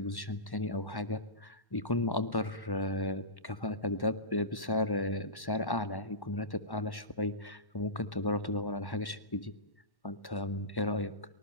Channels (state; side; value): late; right; 1.1 ms